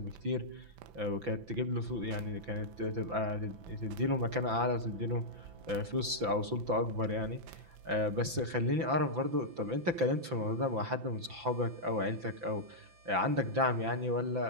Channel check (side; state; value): left; late; 5.9 ms